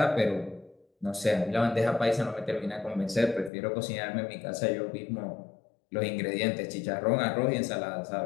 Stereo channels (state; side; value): drops out; right; at 3.5 s